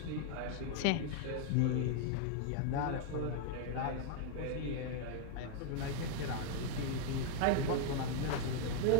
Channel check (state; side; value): different; both; correlation 0.00